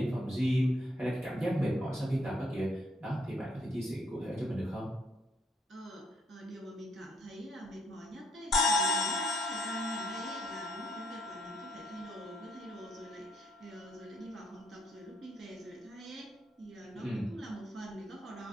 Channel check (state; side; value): normal; both; correlation 0.71